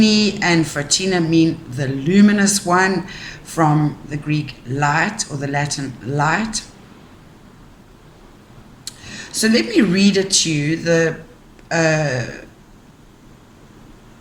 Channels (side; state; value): both; identical; correlation 1.00